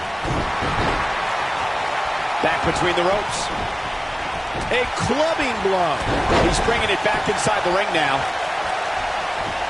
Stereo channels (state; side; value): identical; both; correlation 1.00